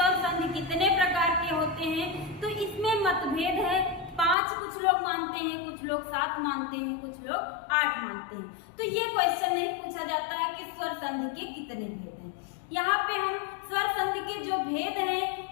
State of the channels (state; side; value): drops out; right; at 4.4 s